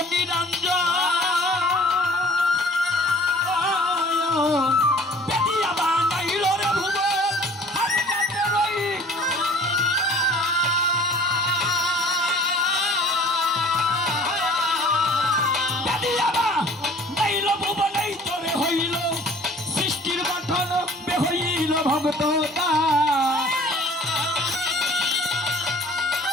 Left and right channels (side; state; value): both; normal; correlation 0.50